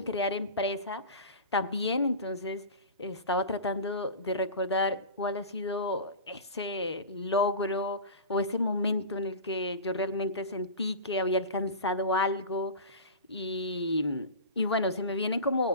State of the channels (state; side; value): inverted; both; correlation -0.30